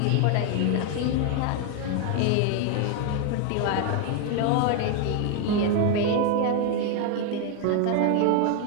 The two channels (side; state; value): both; different; correlation 0.01